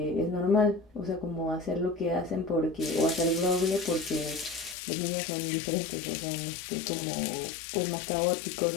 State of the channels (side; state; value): right; drops out; at 4.8 s